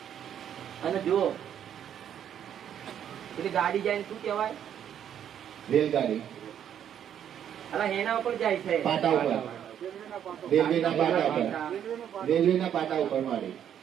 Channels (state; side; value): quieter; left; 9.5 dB